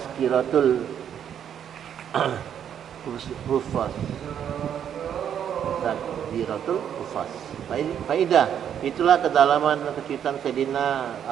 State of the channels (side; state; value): left; quieter; 9.1 dB